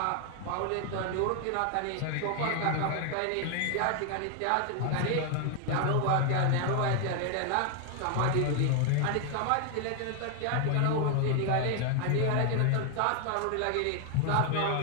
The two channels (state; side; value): different; both; correlation 0.00